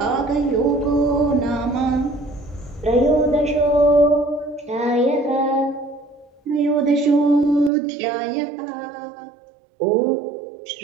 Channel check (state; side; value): drops out; left; at 7.7 s